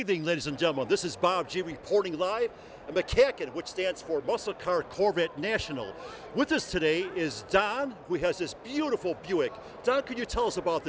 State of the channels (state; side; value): identical; both; correlation 1.00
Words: ladies and gentlemen. This is Bob G reporting live at MCACN, which stands for Muscle Car Corvette National. With us today is Don, who has this beautiful Buick. Don, could you tell us about